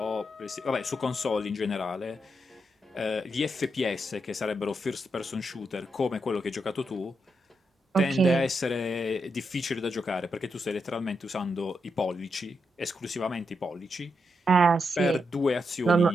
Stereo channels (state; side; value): normal; both; correlation 0.83